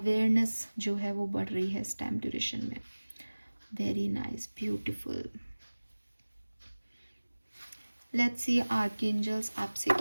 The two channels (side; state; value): both; inverted; correlation -1.00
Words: जो है वो बढ़ रही है इस टाइम ड्यूरेशन में। Very nice, beautiful. Let's see archangels आपसे